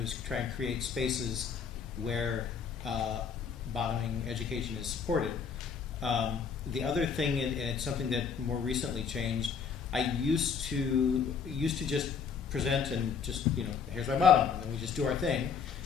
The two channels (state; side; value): quieter; right; 6.3 dB